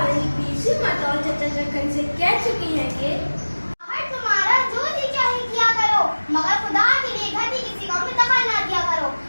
नहीं पीछे मत और चचा चक्कर से कह चुकी है कि तुम्हारा जो जी चाहे किया करो, मगर खुदा के लिए घर की किसी काम में दखल ना दिया करो।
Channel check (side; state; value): both; inverted; correlation -1.00